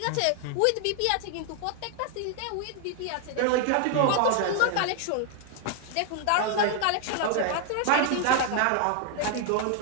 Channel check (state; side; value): different; both; correlation 0.00